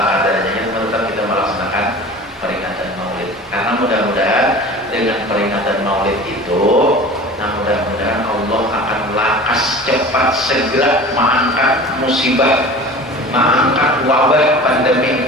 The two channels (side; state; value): both; normal; correlation 0.39